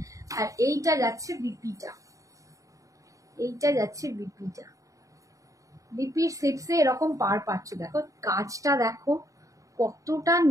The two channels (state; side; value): late; left; 0.16 ms